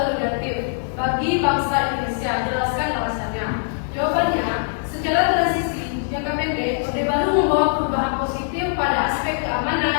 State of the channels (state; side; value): silent; right; digital silence